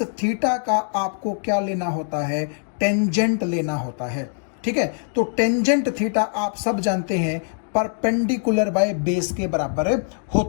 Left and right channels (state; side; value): silent; right; digital silence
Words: थीटा का आपको क्या लेना होता है, टेंजेंट लेना होता है। ठीक है, तो टेंजेंट थीटा आप सब जानते हैं परपेंडिकुलर बाय बेस के बराबर